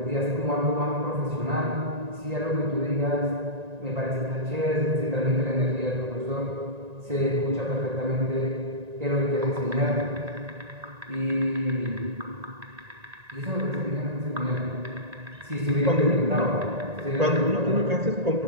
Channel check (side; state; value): left; late; 1.9 ms